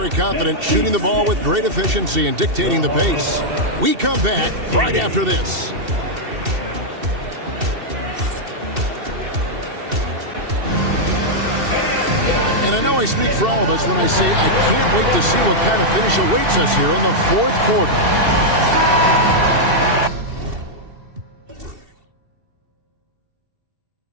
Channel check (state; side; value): late; left; 2.7 ms